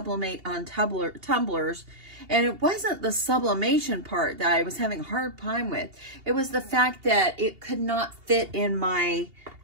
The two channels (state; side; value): late; left; 2.8 ms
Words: on tumblers, and it wasn't the sublimation part that I was having a hard time with. It was the fact that it could not fit in my